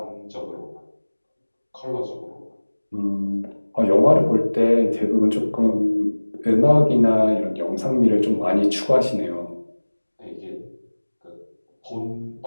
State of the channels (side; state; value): both; inverted; correlation -1.00